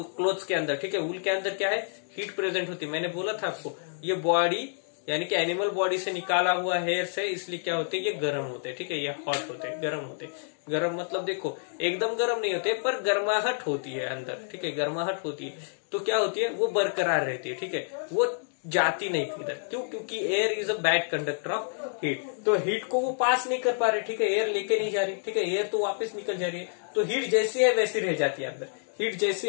क्लोथ्स के अंदर, ठीक है, वूल के अंदर क्या है? हीट प्रेजेंट होती है। मैंने बोला था आपको, ये बॉडी यानी कि एनिमल बॉडी से निकाला हुआ हेयर से, इसलिए क्या होते हैं? ये गर्म होते हैं। ठीक है, ये हॉट होते हैं, गर्म होते हैं। गर्म मतलब देखो, एकदम गर्म नहीं होते, पर गर्माहट होती है अंदर। ठीक है, गर्माहट होती है, तो क्या होती है? वो बरकरार रहती है। ठीक है, वो जाती नहीं किधर। क्यों? क्योंकि air is a bad conductor of heat, तो हीट को वो पास नहीं कर पा रहे। ठीक है, एयर लेके नहीं जा रही। ठीक है, एयर तो वापस निकल जा रही है, तो हीट जैसी है वैसी रह जाती है अंदर, हीट जैसी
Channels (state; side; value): silent; right; digital silence